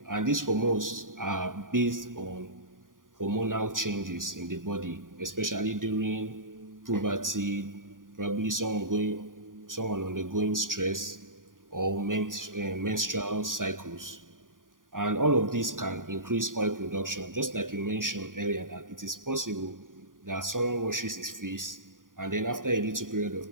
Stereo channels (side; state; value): left; late; 0.89 ms